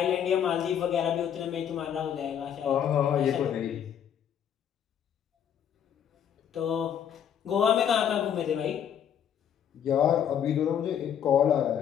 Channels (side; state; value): right; quieter; 9.0 dB